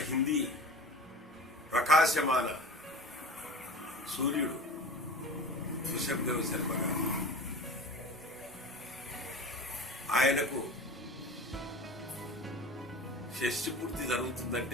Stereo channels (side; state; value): both; normal; correlation 0.36